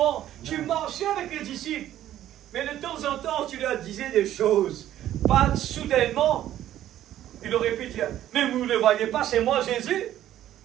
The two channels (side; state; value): left; quieter; 12.4 dB